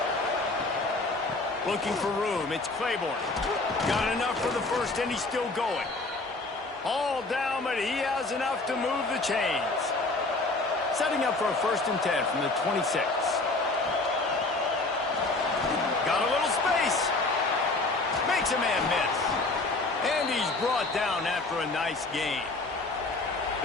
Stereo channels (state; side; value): quieter; right; 3.2 dB